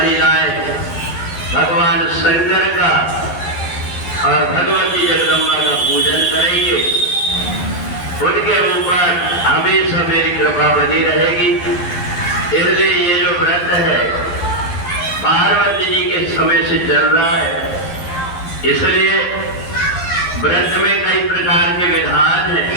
भगवान शंकर का और भगवती जगदम्बा का पूजन करेंगे उनके ऊपर हमेशा मेरी कृपा बनी रहेगी। इसलिए ये जो व्रत है पार्वती जी के समय से चल रहा है। इसलिए व्रत में कई प्रकार के विधान हैं।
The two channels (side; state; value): right; late; 11 ms